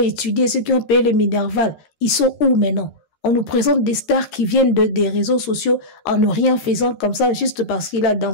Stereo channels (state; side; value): late; right; 13 ms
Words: étudié, ceux qui ont payé le Minerval, ils sont où maintenant? On nous présente des stars qui viennent des réseaux sociaux en ne rien faisant comme ça, juste parce qu'il a